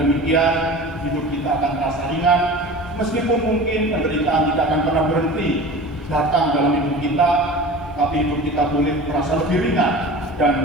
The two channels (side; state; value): both; normal; correlation 0.36